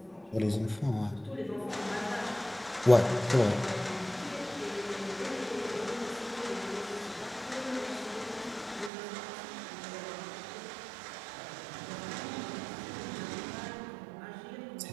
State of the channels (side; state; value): left; drops out; at 8.9 s